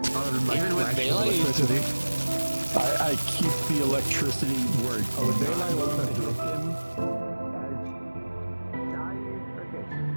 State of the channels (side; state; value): both; inverted; correlation -1.00